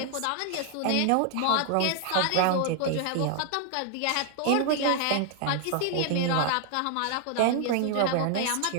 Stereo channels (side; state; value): both; different; correlation 0.00